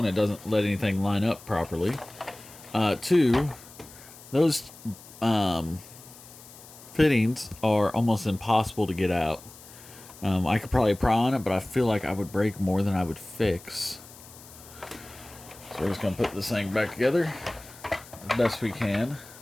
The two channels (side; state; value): left; noise; hiss, 19 dB below the sound